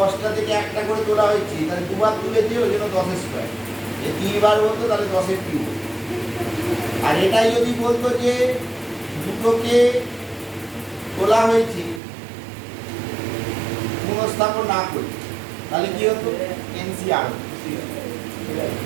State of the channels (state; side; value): drops out; left; at 12.0 s